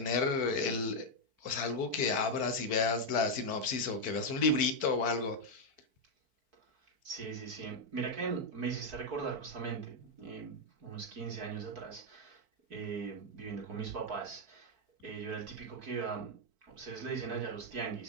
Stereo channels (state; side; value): late; left; 4.5 ms